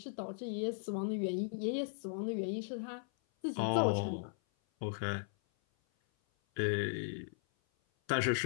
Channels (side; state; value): right; silent; 53 dB below the other